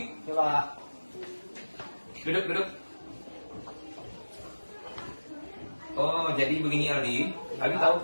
Ya, Pak. Duduk. Oh, jadi begini Aldi. Aldi tahu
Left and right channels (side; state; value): both; inverted; correlation -1.00